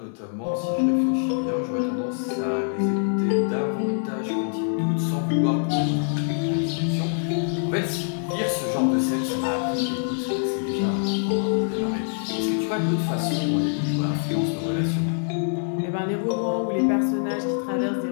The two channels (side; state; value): right; silent; digital silence